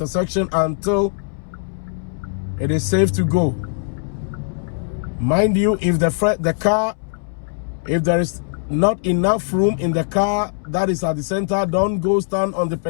until it is safe to go. Mind you, if if there is not enough room in the car that is at the center, don't go stand on the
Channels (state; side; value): silent; right; 65 dB below the other